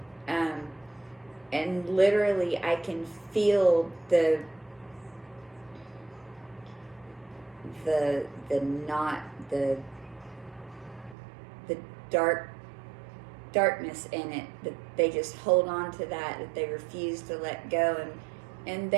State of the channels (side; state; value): left; drops out; at 11.2 s